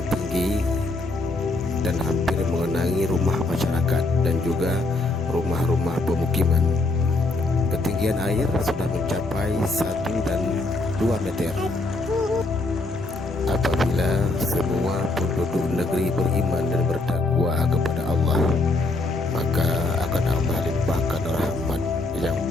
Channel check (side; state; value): right; quieter; 3.0 dB